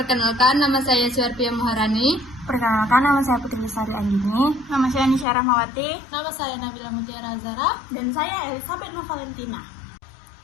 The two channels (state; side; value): drops out; right; at 5.2 s